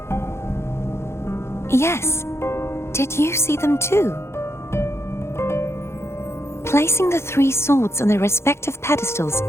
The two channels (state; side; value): late; right; 0.13 ms